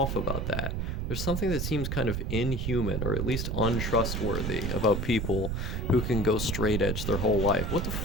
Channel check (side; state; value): right; noise; rumble, 2 dB below the sound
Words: about that. There's something that seems kind of inhuman, or at least untrustworthy, about people who can go straight edge their whole life. What the